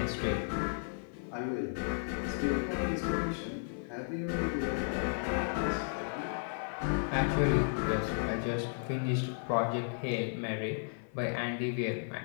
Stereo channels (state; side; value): silent; right; 55 dB below the other